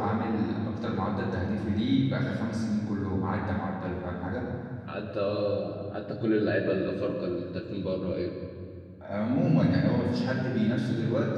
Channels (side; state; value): both; identical; correlation 1.00